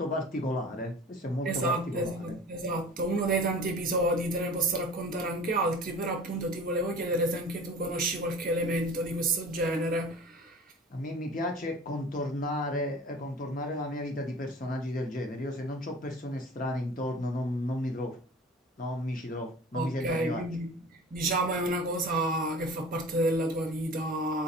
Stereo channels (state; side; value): normal; both; correlation 0.41